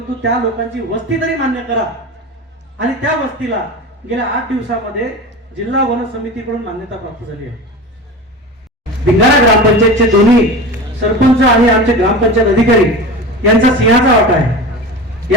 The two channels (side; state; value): both; normal; correlation 0.30